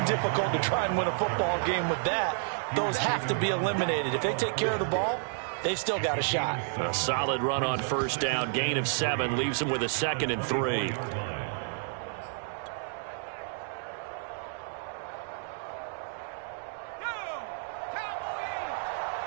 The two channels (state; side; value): silent; left; 57 dB below the other